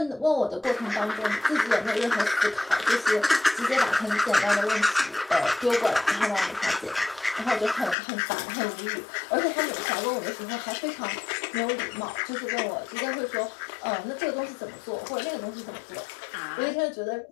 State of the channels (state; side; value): drops out; right; at 8.0 s